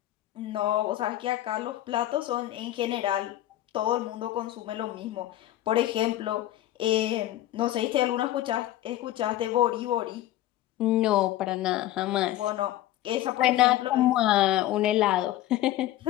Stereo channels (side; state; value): right; quieter; 14.1 dB